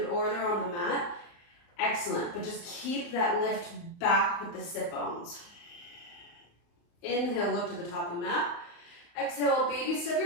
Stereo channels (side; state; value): right; late; 34 ms